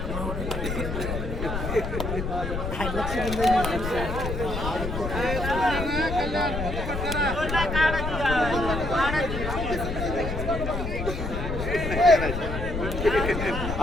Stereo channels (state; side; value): noise; left; rumble, 4 dB below the sound